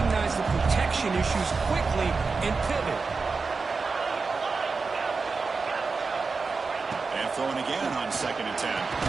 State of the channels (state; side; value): quieter; left; 4.5 dB